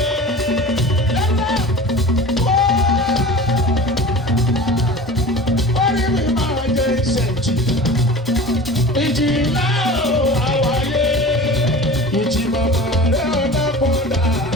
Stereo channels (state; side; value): normal; both; correlation 0.37